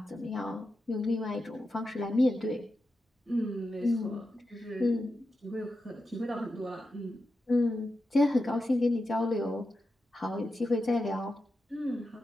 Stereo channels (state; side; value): normal; both; correlation 0.89